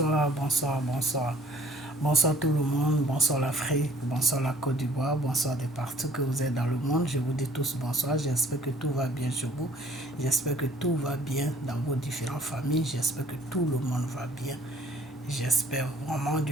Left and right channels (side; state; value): both; normal; correlation 0.56